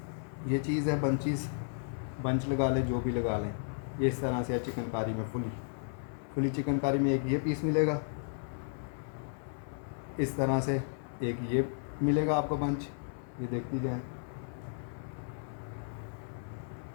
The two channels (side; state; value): right; silent; 55 dB below the other